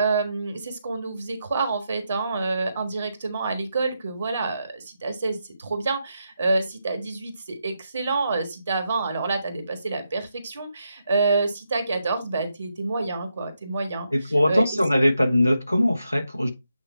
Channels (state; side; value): inverted; both; correlation -0.84